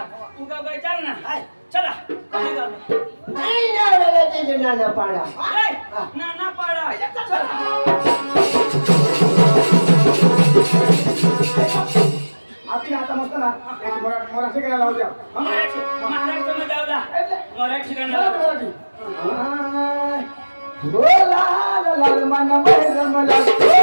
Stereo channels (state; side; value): inverted; both; correlation -1.00